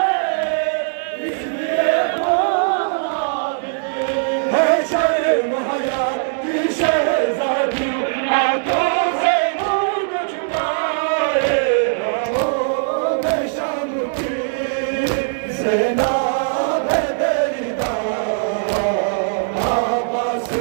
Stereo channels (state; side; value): silent; left; digital silence